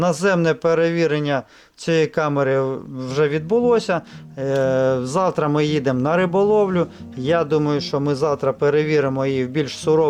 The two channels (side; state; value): both; identical; correlation 1.00